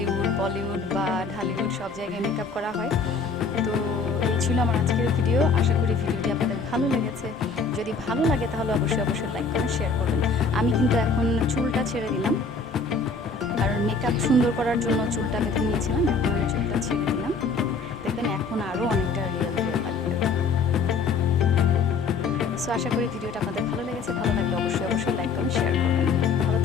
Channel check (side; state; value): right; quieter; 4.5 dB